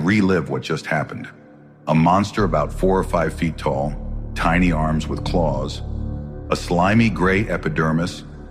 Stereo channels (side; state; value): both; identical; correlation 1.00